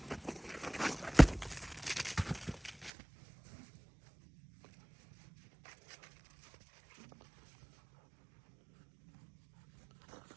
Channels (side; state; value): left; drops out; at 2.9 s